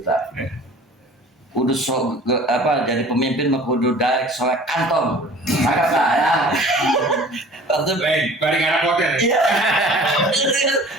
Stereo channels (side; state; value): both; normal; correlation 0.46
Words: Kudu jadi pemimpin mah kudu daek soek kantong. Agak lah ya. Waktu Balik anak hotel. iya.